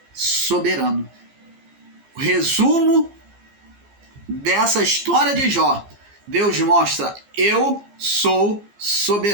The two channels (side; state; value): left; late; 15 ms